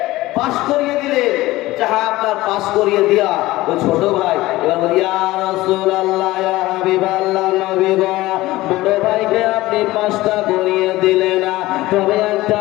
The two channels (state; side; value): quieter; right; 18.0 dB